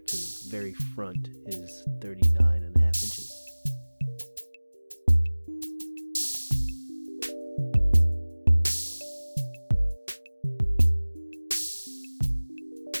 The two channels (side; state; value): both; inverted; correlation -1.00